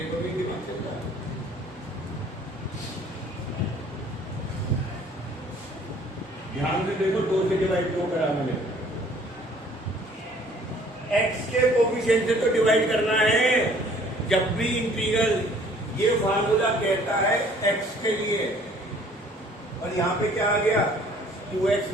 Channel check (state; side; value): normal; both; correlation 0.55